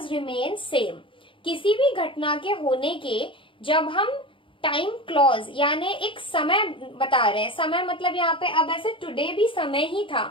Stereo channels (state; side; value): late; right; 0.25 ms